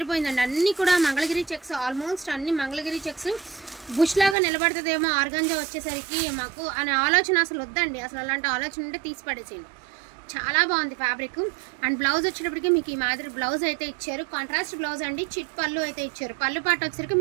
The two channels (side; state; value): left; drops out; at 4.4 s